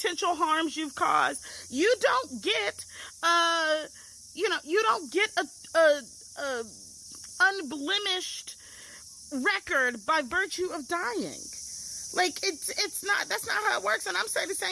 harms you've caused. You don't get, a unblemished record by virtue of dying. Like, that's not how it works. And I'm saying the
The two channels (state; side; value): identical; both; correlation 1.00